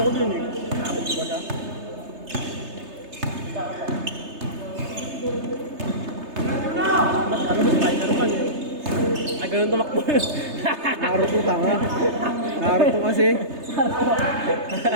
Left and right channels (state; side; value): late; left; 3.3 ms